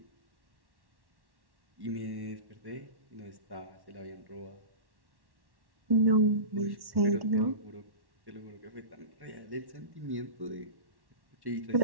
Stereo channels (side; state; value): left; late; 1.1 ms